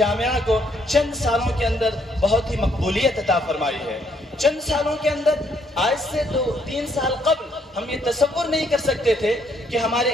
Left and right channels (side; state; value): both; normal; correlation 0.70